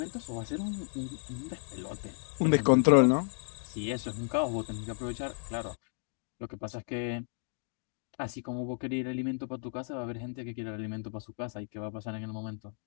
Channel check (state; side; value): silent; right; 56 dB below the other